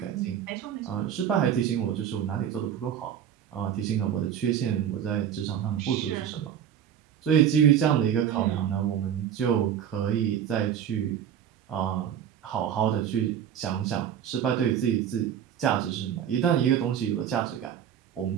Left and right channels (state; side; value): quieter; left; 9.3 dB